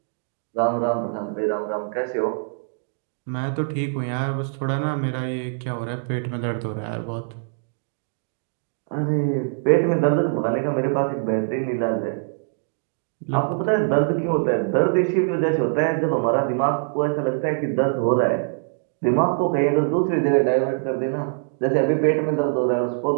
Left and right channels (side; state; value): left; silent; digital silence